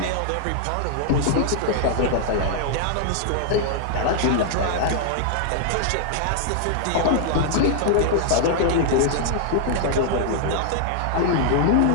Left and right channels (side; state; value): both; different; correlation -0.01